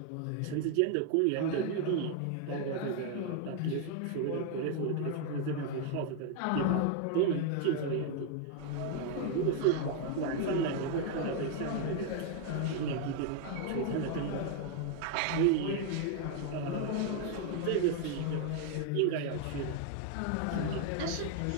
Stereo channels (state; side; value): different; both; correlation 0.00